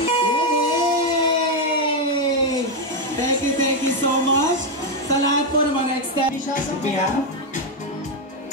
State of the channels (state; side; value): normal; both; correlation 0.04